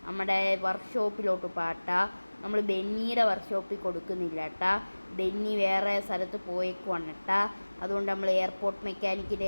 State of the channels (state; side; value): inverted; both; correlation -1.00